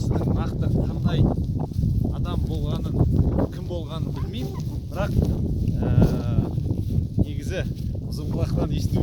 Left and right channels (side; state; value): both; identical; correlation 1.00